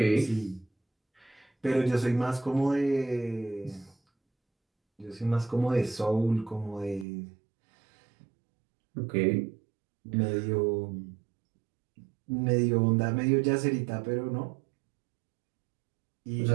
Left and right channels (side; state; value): left; drops out; at 7.1 s